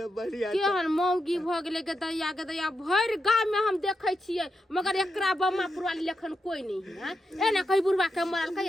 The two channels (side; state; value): both; normal; correlation 0.86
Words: बढ़िया केहन मौगी भ गेलै के दैया भर गांव में हम देखै छियै, मगर एकरा बम्मापुर वाली लेखन कोई नहीं है। एना कहि बुढ़वा के मरल